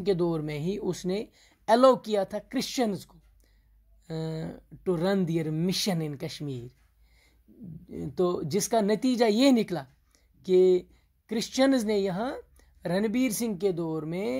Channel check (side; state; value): both; identical; correlation 1.00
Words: के दौर में ही उसने अलाउ किया था क्रिश्चियंस को to run their mission in Kashmir. तो जिसका नतीजा ये निकला कि क्रिश्चियंस ने यहाँ रणबीर सिंह के दौर